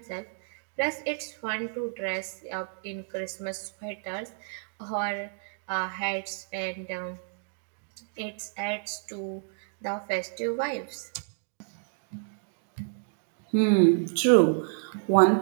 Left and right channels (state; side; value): silent; left; 58 dB below the other